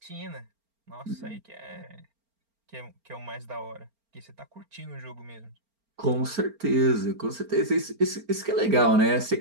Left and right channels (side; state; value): left; late; 4.4 ms